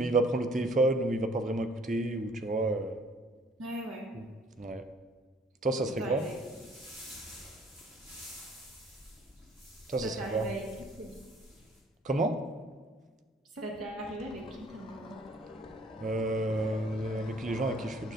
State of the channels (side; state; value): both; normal; correlation 0.58